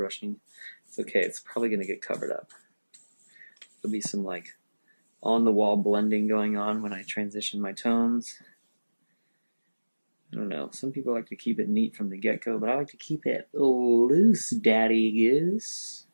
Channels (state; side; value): inverted; both; correlation -1.00